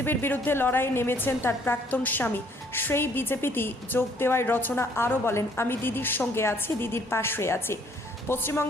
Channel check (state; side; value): normal; both; correlation 0.62